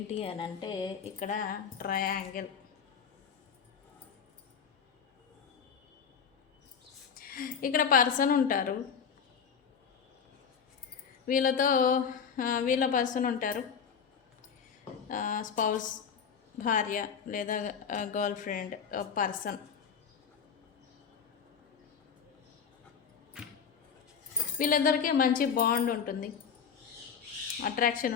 అని అంటే, ఇక్కడ ట్రయాంగిల్. ఇక్కడ పర్సన్ ఉంటారు, వీళ్ళ పర్సన్ ఉంటారు, స్పౌస్, భార్య లేదా గర్ల్ ఫ్రెండ్ పర్సన్. వీళ్ళందరికీ మంచి బాండ్ ఉంటుంది, అట్రాక్షన్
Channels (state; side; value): quieter; right; 6.9 dB